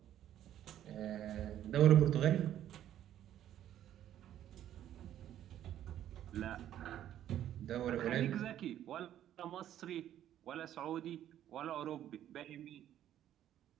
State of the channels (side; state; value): left; quieter; 11.4 dB